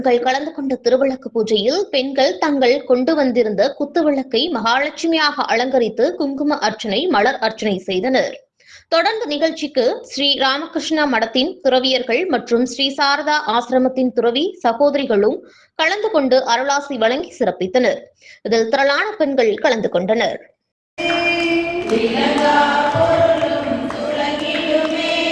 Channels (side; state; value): both; identical; correlation 1.00